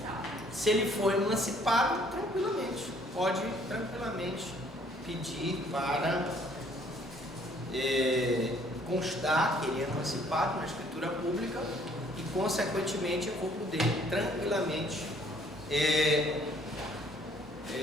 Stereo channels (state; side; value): normal; both; correlation 0.61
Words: caso. Se ele for emancipado, tranquilamente, pode tranquilamente pedir para constar que ele é emancipado na escritura pública e, consequentemente, eu vou poder tranquilamente